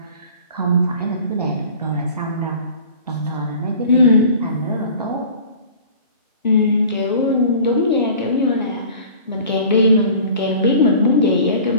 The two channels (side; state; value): both; inverted; correlation -0.45